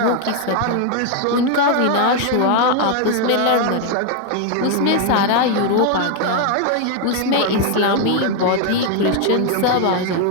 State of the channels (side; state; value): both; different; correlation 0.01